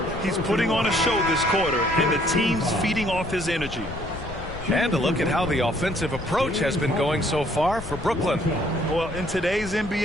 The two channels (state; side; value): noise; left; rumble, 12 dB below the sound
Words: He's putting on a show this quarter, and the team's feeding off his energy. And a look at how the offensive approach has been going so far for Brooklyn. Well, in today's